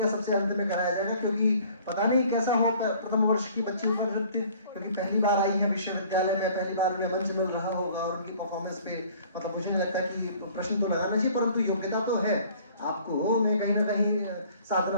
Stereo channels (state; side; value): inverted; both; correlation -0.53